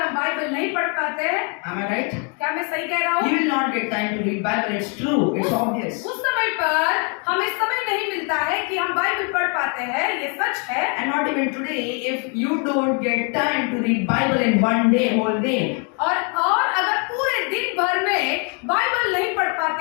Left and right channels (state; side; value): quieter; right; 37.2 dB